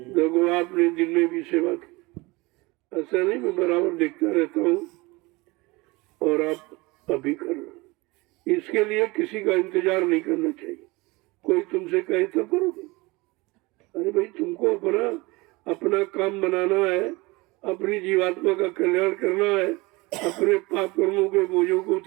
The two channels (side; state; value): left; quieter; 23.5 dB